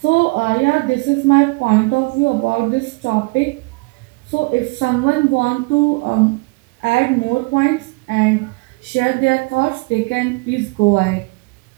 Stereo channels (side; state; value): left; quieter; 28.3 dB